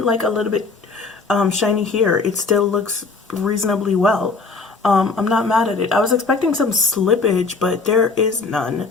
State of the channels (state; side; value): quieter; right; 4.2 dB